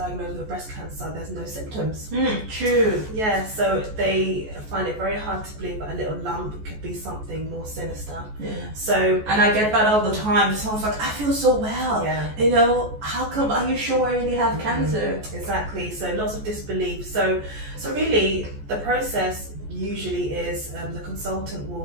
with breast cancer, there's no symptoms. True. Yeah, so they find it very hard to believe that a little lump could be something more sinister. Yeah. So, and I get that all the time. Someone's like, I feel so well. Yeah. You know, how come? Are you sure I really have cancer? Exactly. So lots of disbelief. So really, the process usually is the consultant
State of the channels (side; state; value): left; late; 14 ms